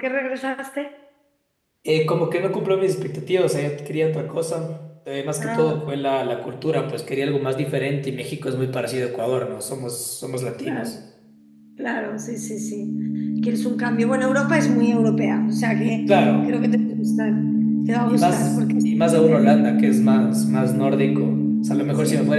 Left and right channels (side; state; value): both; identical; correlation 1.00